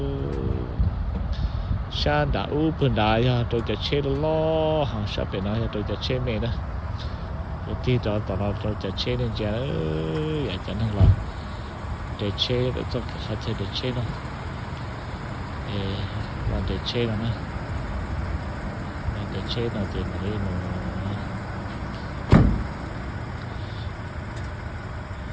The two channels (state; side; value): identical; both; correlation 1.00